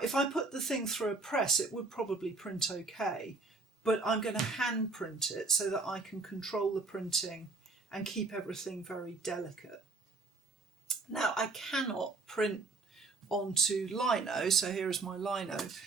if I put the thing through a press, it would probably print okay, but I'm going to hand print it so that I can control the printing and keep everything very delicate. Now, I cannot print onto lino, so here is my lino,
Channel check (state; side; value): quieter; left; 3.6 dB